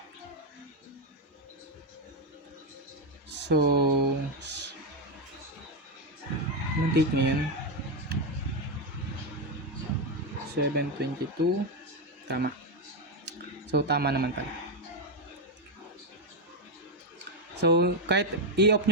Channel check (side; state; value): both; normal; correlation 0.05